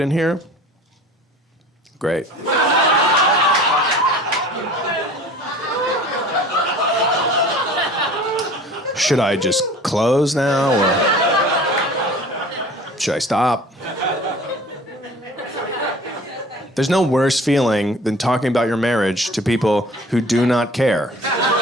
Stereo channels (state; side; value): normal; both; correlation 0.44